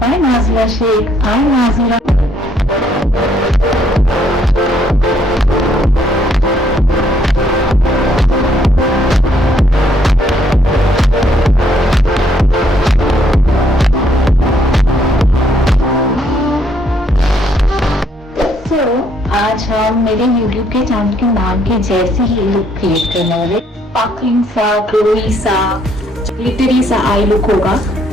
Nazira Sheikh. I'm Nazira. So, आज हम मेरे YouTube के channel के नाम के जैसे ही लुक क्रिएट करने वाले स्पार्कलिंग सा, ग्लोई सा, ग्लिटरी सा आई लुक होगा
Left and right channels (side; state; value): both; normal; correlation 0.68